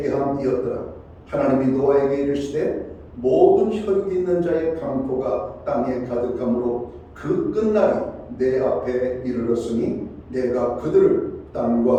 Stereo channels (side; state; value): both; identical; correlation 1.00